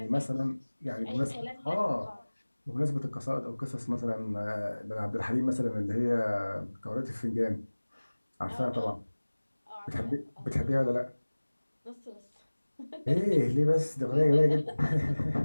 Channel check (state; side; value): inverted; both; correlation -1.00